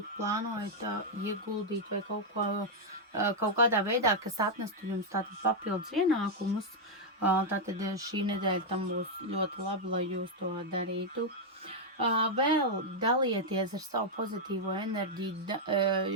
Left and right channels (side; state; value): both; normal; correlation -0.02